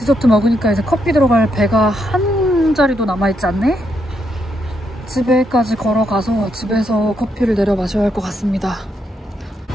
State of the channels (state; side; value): normal; both; correlation 0.78